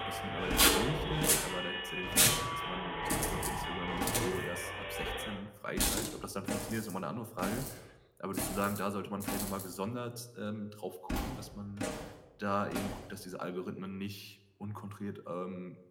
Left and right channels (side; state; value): both; identical; correlation 1.00